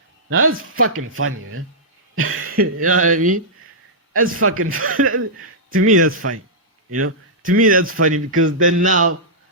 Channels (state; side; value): normal; both; correlation -0.12